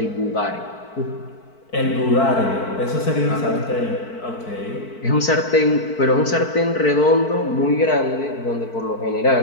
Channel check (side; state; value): right; late; 4.5 ms